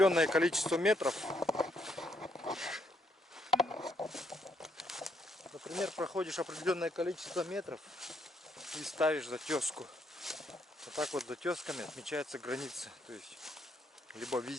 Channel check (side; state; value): both; normal; correlation 0.74